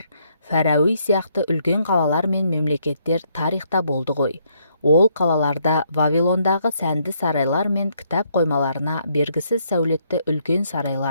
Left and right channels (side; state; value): both; inverted; correlation -0.72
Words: Фәрауи сияқты үлкен қалалар мен мемлекеттер тарихта болды ғой. Ол қалаларда Вавилондағы сәнді сарайлар мен кітап қоймаларына бергісіз сәулетті үлкен